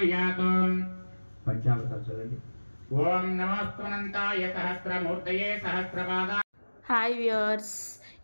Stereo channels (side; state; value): both; inverted; correlation -1.00